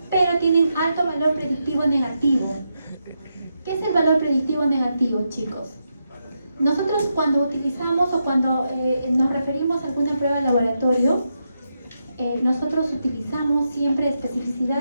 pero tienen alto valor predictivo negativo. ¿Qué es el valor predictivo negativo, chicos? Nosotros cuando utilizamos o cuando nos referimos a alguna prueba de laboratorio, nosotros utilizamos siempre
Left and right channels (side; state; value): both; inverted; correlation -0.84